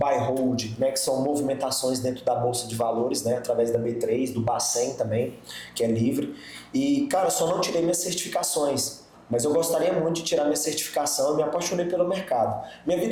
hold, né, que são movimentações dentro da bolsa de valores, né, através da B3, do Bacen também, que é livre. E, cara, só não tirei minhas certificações, mas eu gostaria muito de tirar minha certificação e me apaixonei pelo mercado. Minha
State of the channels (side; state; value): both; identical; correlation 1.00